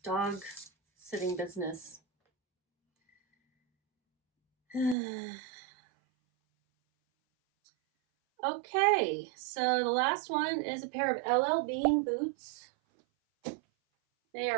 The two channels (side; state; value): left; drops out; at 5.0 s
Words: dog sitting business. Okay, so the last one is a pair of LL Bean boots. They